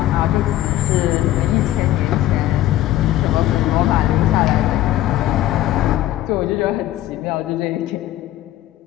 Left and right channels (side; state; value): right; quieter; 14.0 dB